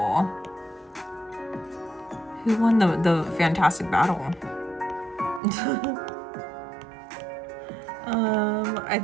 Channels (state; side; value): drops out; left; at 5.4 s